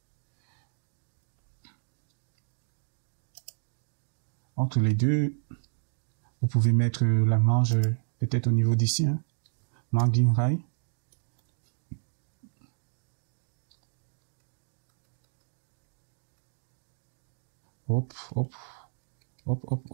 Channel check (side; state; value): left; silent; digital silence